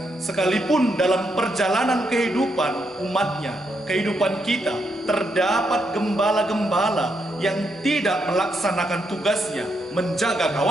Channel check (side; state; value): both; normal; correlation 0.79